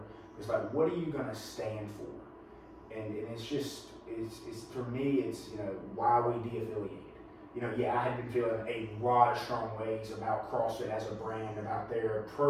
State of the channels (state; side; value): identical; both; correlation 1.00